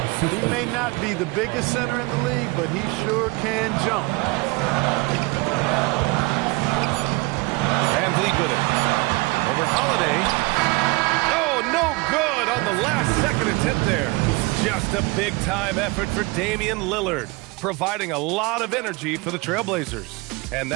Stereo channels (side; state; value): left; quieter; 25.1 dB